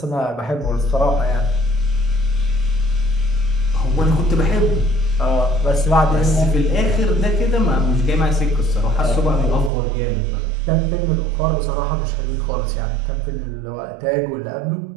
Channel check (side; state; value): left; drops out; at 9.7 s